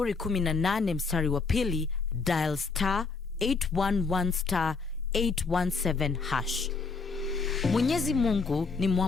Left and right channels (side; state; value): right; quieter; 4.5 dB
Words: 18 mstari wa pili, dial star 811 star 817 hash. Mwenyezi Mungu ni